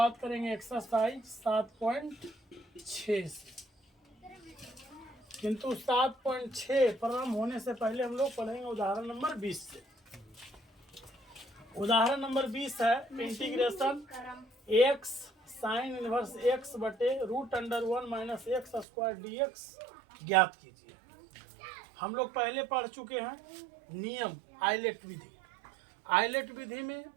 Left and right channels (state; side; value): drops out; left; at 18.9 s